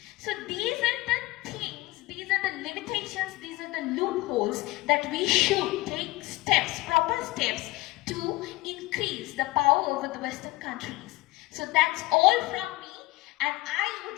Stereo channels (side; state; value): right; quieter; 20.6 dB